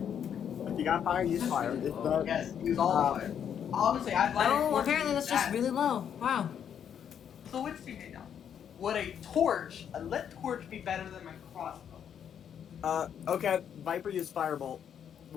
If you got fire, use fire. If not, Yes, use all the fire. Honestly, I'd like. Oh, apparently that's just really low. Wow. So which do you need now? Would a torch, a lit torch, be better than my crossbow? okay. Viper used firebolt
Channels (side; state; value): right; quieter; 8.6 dB